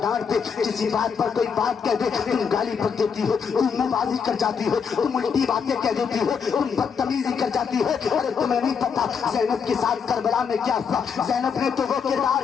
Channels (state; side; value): quieter; right; 6.4 dB